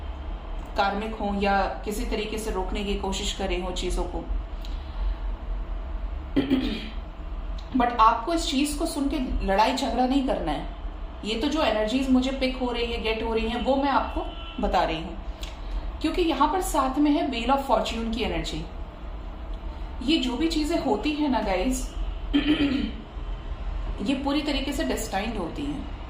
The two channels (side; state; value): both; identical; correlation 1.00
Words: कार्मिक हो या किसी तरीके से रोकने की कोशिश करे हो चीजों को। बट आपको इस चीज को सुन के लड़ाई झगड़ा नहीं करना है। ये तो जो एनर्जीज मुझे पिक हो रही है, गेट हो रही है, वो मैं आपको बता रही हूँ, क्योंकि यहां पर साथ में है व्हील ऑफ फॉर्च्यून की एनर्जी। ये जो भी चीजें होती है ना गाइस, ये पूरी तरीके से डेस्टाइन्ड होती हैं,